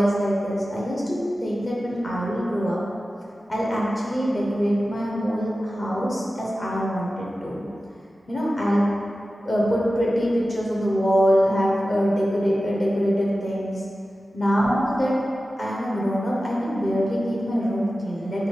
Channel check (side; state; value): both; normal; correlation 0.94